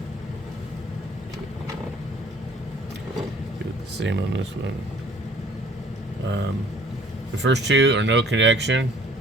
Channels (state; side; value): normal; both; correlation 0.56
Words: do it the same on this one. The first two are no connection,